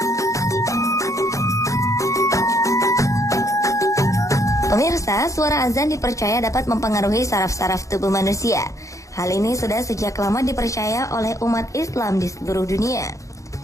Pemirsa, suara azan dipercaya dapat mempengaruhi saraf-saraf tubuh manusia. Hal ini sudah sejak lama dipercaya oleh umat Islam di seluruh dunia.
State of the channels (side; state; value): right; late; 0.15 ms